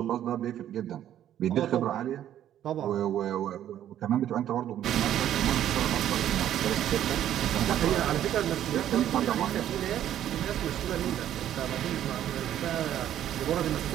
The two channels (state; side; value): quieter; left; 11.3 dB